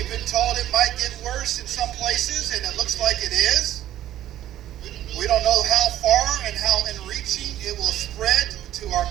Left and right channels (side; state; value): left; quieter; 12.7 dB